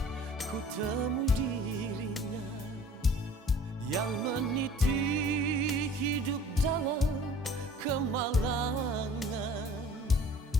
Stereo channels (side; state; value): both; normal; correlation 0.49